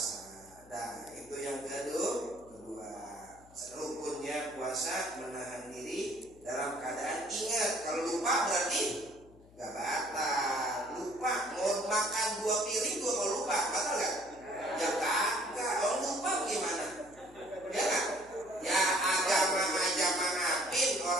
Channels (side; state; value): left; noise; hum, 25 dB below the sound